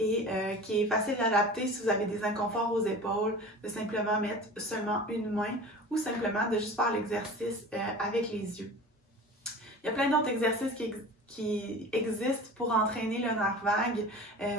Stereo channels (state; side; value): normal; both; correlation 0.37